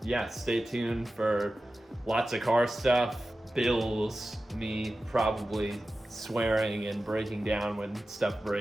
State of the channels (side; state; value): both; normal; correlation 0.94